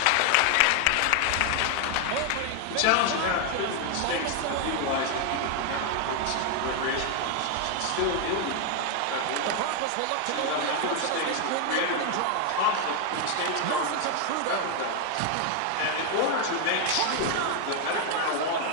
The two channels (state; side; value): different; both; correlation 0.00